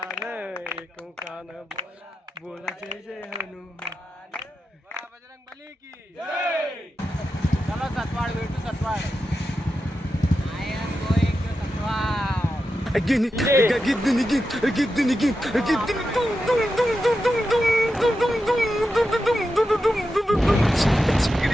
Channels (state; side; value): normal; both; correlation 0.89